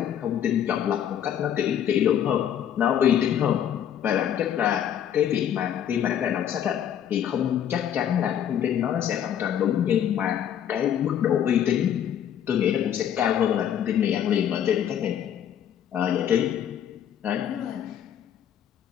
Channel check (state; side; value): quieter; right; 9.7 dB